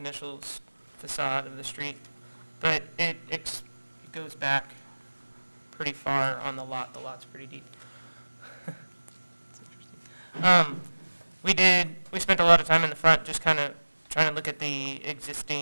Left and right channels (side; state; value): both; inverted; correlation -1.00